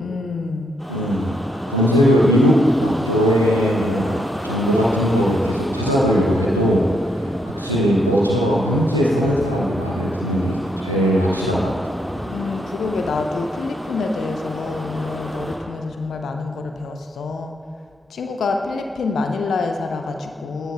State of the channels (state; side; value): normal; both; correlation 0.76